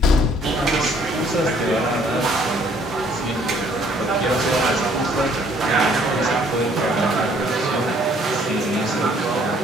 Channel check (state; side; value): normal; both; correlation 0.62